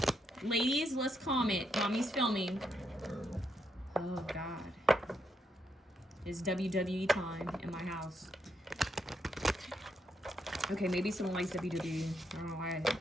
Ladies, let's comment. Mommy's filming. Oh God, it's WWE time in my house. Okay, maybe someone likes WWE. I don't know why I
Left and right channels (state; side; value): normal; both; correlation 0.79